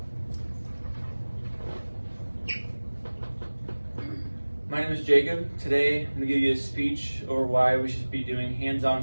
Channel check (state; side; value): inverted; both; correlation -1.00